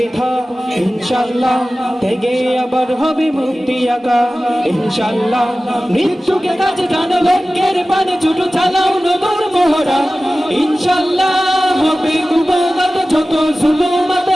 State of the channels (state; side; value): normal; both; correlation 0.96